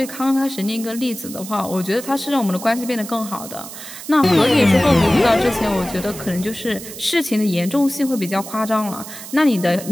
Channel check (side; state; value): right; noise; hiss, 12 dB below the sound